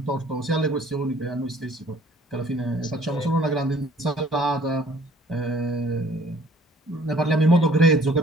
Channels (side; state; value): both; normal; correlation 0.56